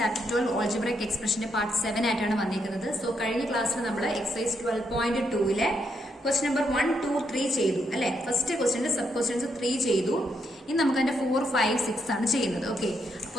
12 algebraic expression part 7 ആയിട്ടാണ് വന്നിരിക്കുന്നത്. So കഴിഞ്ഞ ക്ലാസ്സിൽ നമ്മൾ എക്സസൈസ് 12.2 ക്വസ്റ്റ്യൻ നമ്പർ 1, 2, 3 ചെയ്തു അല്ലെ. ഫസ്റ്റ് ക്വസ്റ്റ്യന്റെ സബ് ക്വസ്റ്റ്യൻസ് 3 ചെയ്തു. ഇനി നമുക്ക് അതിന്റെ 4, 5, 6 ആണ് ചെയ്യുന്നത്. ഓക്കെ,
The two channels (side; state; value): both; normal; correlation 0.78